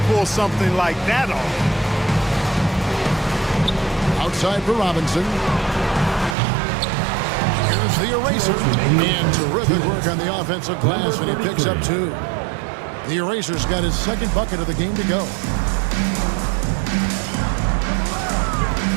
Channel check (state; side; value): drops out; left; at 6.4 s